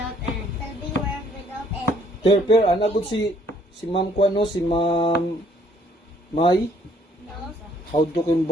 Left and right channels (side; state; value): both; normal; correlation 0.63